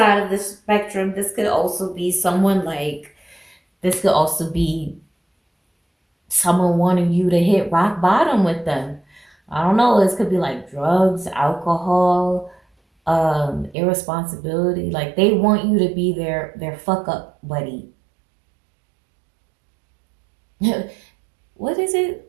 of the spectrum, this could also be someone like, this could also be someone wanting you to hit rock bottom with them. I don't know, this could be like drugs, alcohol, irresponsibility. Like they want you to be their fuck up buddy. What is it?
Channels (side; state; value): left; drops out; at 13.8 s